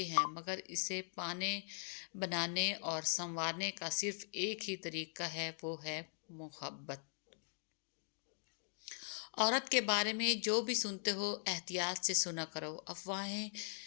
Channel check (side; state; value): right; silent; digital silence